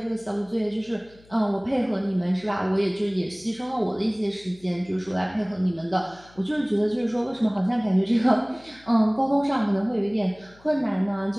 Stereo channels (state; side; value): noise; left; hum, 27 dB below the sound